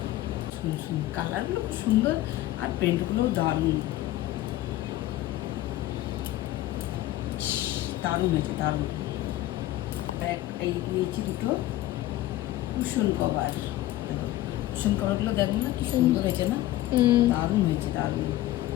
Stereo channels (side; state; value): right; quieter; 15.3 dB